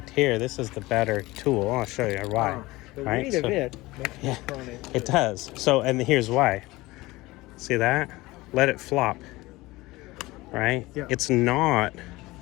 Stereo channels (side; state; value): right; quieter; 20.1 dB